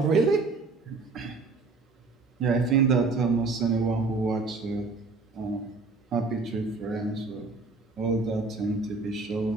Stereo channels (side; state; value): left; quieter; 3.9 dB